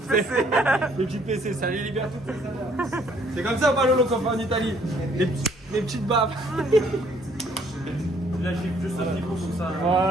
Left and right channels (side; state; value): both; normal; correlation 0.63